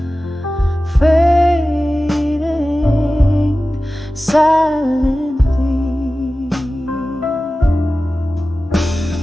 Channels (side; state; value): both; normal; correlation 0.95